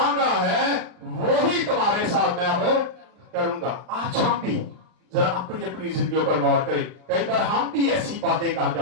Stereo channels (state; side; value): late; left; 39 ms